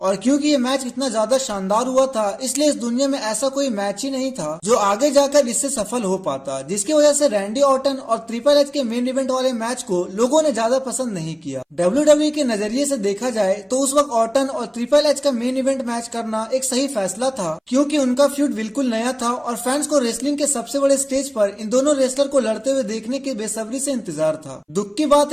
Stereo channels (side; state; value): both; identical; correlation 1.00